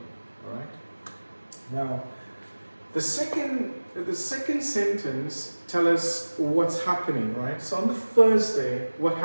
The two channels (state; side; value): inverted; both; correlation -1.00